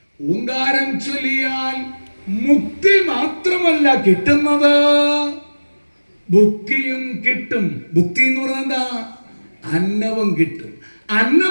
ഓങ്കാരം ചൊല്ലിയാൽ മുക്തി മാത്രമല്ല കിട്ടുന്നത്, ഭുക്തിയും കിട്ടും. ഭുക്തി എന്ന് പറഞ്ഞാൽ എന്താ? അന്നവും കിട്ടും.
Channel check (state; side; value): inverted; both; correlation -1.00